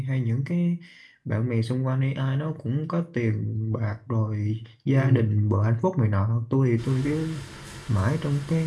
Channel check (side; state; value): both; identical; correlation 1.00